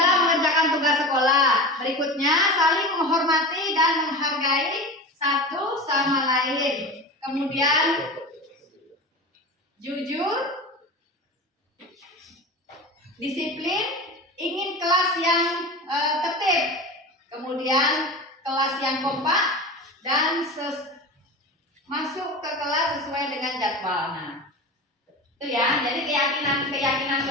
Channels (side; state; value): both; normal; correlation 0.29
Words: mengerjakan tugas sekolah. Berikutnya, saling menghormati dan menghargai satu sama lain. Kemudian, jujur, disiplin, ingin kelas yang tertib, kemudian kelas yang kompak, dan masuk ke kelas sesuai dengan jadwal. Nah, itu ya. Jadi keyakinan